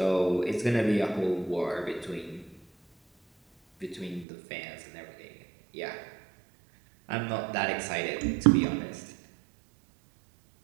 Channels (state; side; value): drops out; left; at 4.2 s